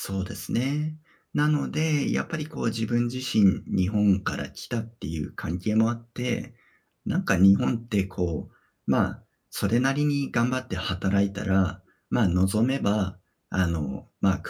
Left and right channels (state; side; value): identical; both; correlation 1.00